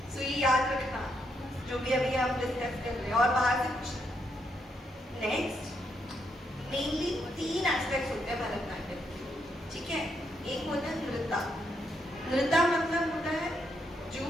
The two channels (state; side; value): normal; both; correlation 0.78